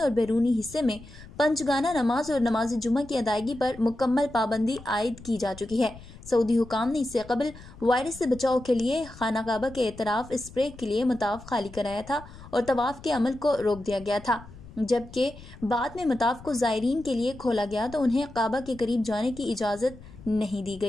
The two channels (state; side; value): noise; left; rumble, 18 dB below the sound